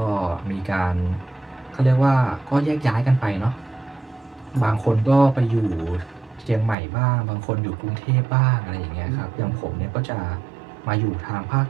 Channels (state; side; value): drops out; left; at 6.8 s